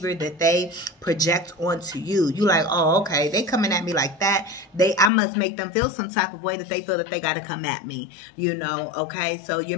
that they project onto you. You like, oh, okay, they coming at me like that. I must make them feel some type of way that they feel that they got to come at me, you know, okay? So you're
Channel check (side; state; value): right; drops out; at 5.1 s